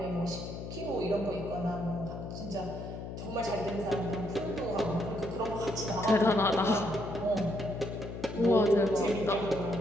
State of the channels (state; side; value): noise; left; hum, 8 dB below the sound